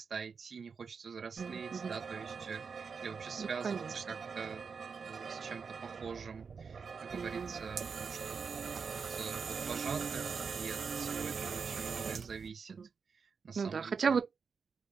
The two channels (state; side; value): quieter; left; 5.6 dB